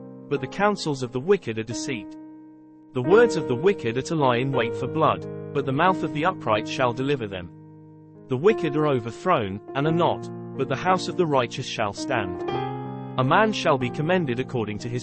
but the counsels of the wicked are deceit. The words of the wicked are to lie in wait for blood, but the mouth of the upright shall deliver them. The wicked are overthrown, and are not, but the house of the righteous shall stand. A man shall be commended according to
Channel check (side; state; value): both; identical; correlation 1.00